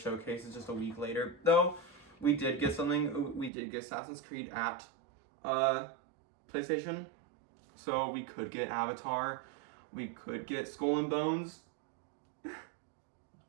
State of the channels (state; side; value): drops out; left; at 3.5 s